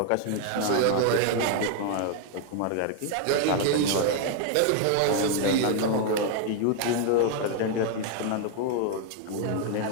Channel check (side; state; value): both; different; correlation 0.00